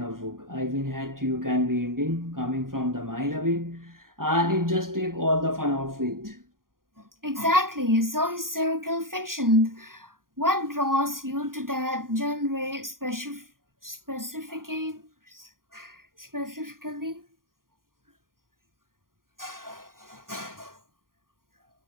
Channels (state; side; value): late; left; 0.91 ms